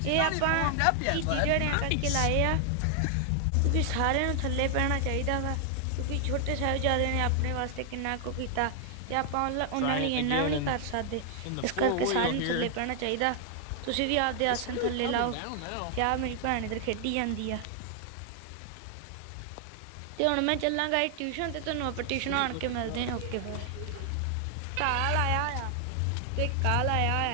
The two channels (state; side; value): different; both; correlation 0.00